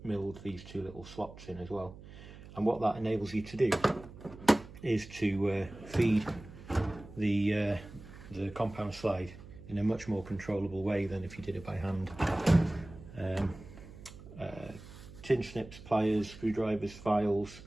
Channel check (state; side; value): noise; right; hum, 16 dB below the sound